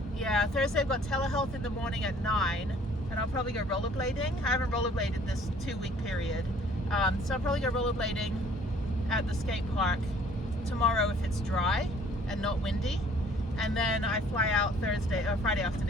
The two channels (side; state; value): both; normal; correlation 0.56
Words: Yeah, Thursday I've got telehealth in the morning at 9, and I'll probably go rollerblading. I haven't rollerbladed this 2-week period, so I'll probably go rollerblading at the skate park tomorrow if it's dry and not windy, and then I fly out Friday